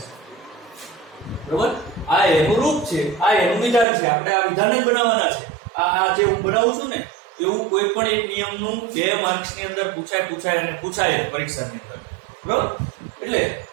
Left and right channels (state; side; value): drops out; left; at 3.9 s